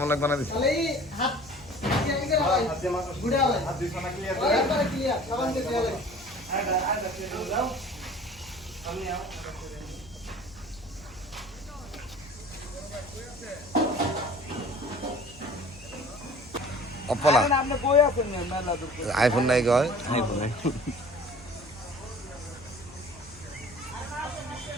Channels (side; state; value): left; noise; hum, 22 dB below the sound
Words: লাগবে না দিছি তাহলে হাত ক্লিয়ার করে ভাই হাত দিয়ে মাথা গুড়া ভাই হাত দিয়ে সোনা ক্লিয়ার একবারে ক্লিয়ার সাবান দিয়ে ক্লিয়ার আডা ক্লিয়ার দাও আমি আও অপলা আপনি বই আছেন মেলা দূর আইফোন নাই কয় আইফোন